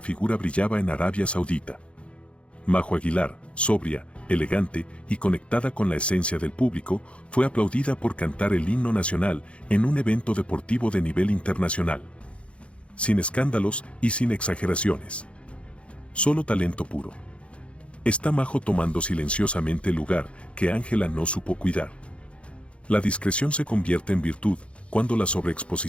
figura brillaba en Arabia Saudita. Majo Aguilar, sobria, elegante y conectada con la esencia del público, fue aplaudida por cantar el himno nacional en un evento deportivo de nivel internacional. Sin escándalos y sin exageraciones. Solo talento puro. Está Majo tomando silenciosamente el lugar que Ángela no supo cuidar. ¿La discreción se convierte en virtud cuando la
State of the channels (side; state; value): right; late; 0.060 ms